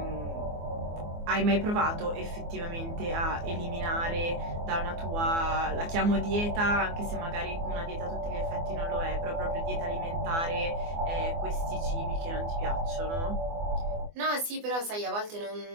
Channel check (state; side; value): late; left; 24 ms